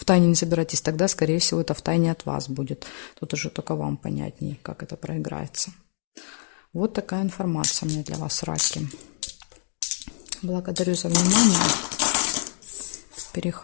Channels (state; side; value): silent; right; 61 dB below the other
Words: тайне не собираетесь, тогда, скорее всего, это в тайне от вас будет. Тут уже только вам понятнее, как это проиграется. Вот такая информация у меня для вас, раки. Благодарю за внимание.